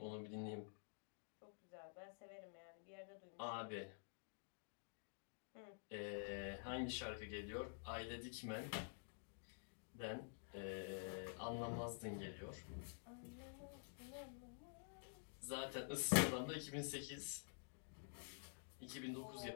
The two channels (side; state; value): right; silent; digital silence